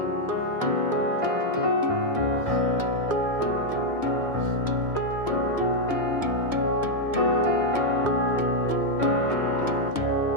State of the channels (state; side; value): late; left; 1.5 ms